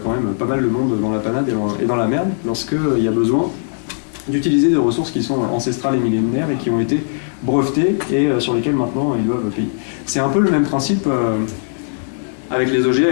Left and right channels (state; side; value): silent; right; digital silence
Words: quand même pas mal de monde dans la panade et dans la merde lorsqu'il y a besoin d'utiliser des ressources qui sont ancestrales et millénaires et qui ont été brevetées et sur lesquelles maintenant ils doivent payer. C'est un peu le même principe avec les